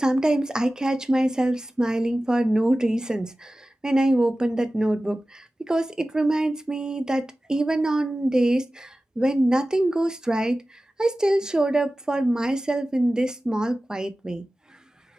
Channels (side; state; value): both; normal; correlation 0.96